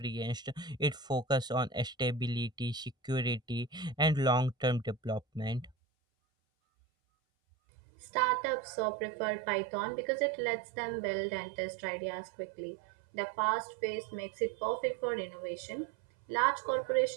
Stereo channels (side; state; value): left; drops out; at 5.8 s